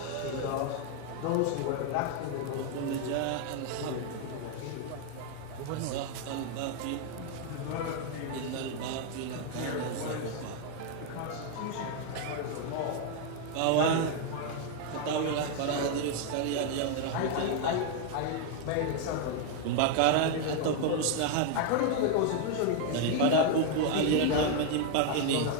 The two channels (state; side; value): different; both; correlation 0.00